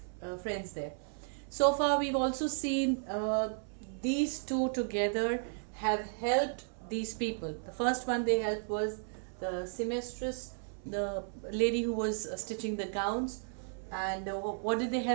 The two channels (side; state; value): left; silent; 55 dB below the other